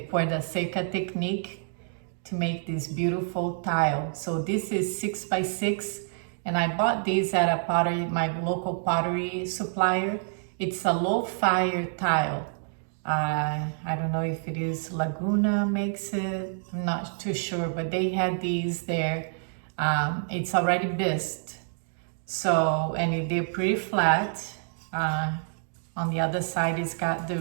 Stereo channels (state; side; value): silent; left; digital silence